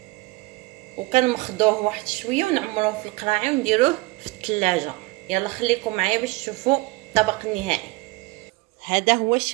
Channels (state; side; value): quieter; left; 23.3 dB